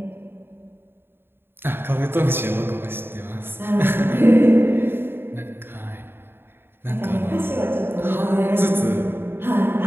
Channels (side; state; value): left; late; 0.11 ms